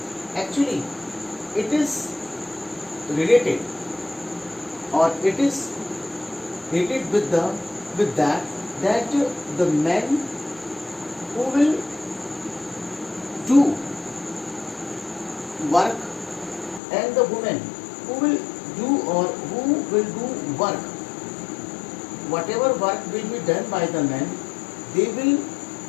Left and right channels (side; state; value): right; drops out; at 16.8 s